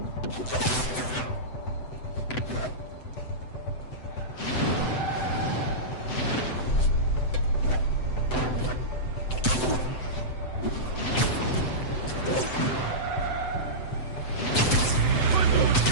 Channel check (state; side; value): late; right; 7.9 ms